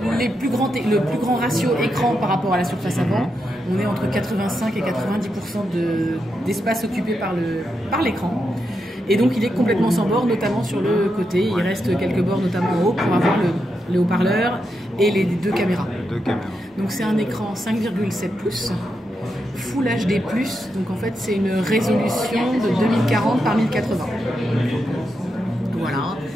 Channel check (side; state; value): both; normal; correlation 0.85